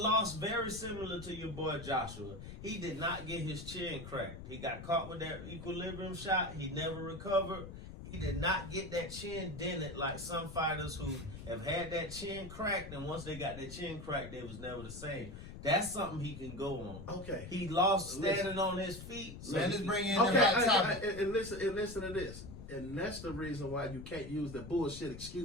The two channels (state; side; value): noise; left; rumble, 11 dB below the sound